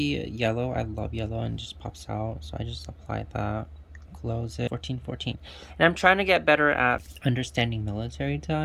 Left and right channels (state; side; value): identical; both; correlation 1.00